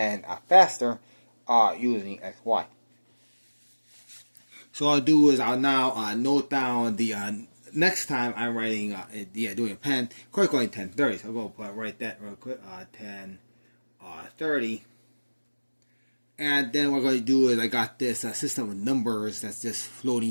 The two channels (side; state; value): both; inverted; correlation -1.00